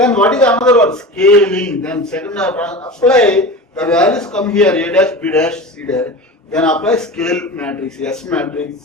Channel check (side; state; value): both; normal; correlation 0.31